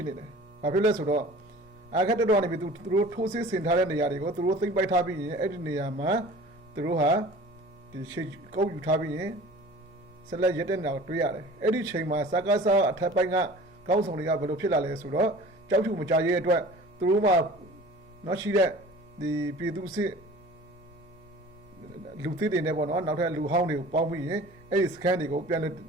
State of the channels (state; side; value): noise; right; hum, 29 dB below the sound